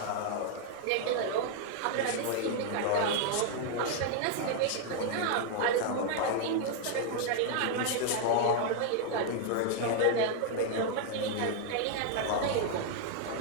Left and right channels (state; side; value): different; both; correlation 0.00